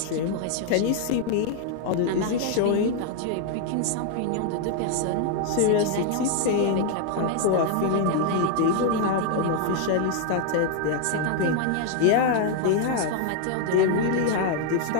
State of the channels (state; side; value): different; both; correlation 0.00